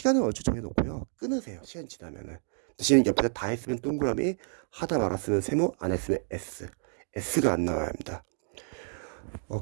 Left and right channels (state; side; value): silent; left; digital silence